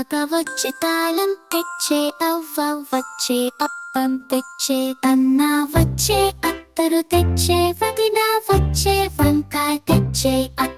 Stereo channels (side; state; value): both; identical; correlation 1.00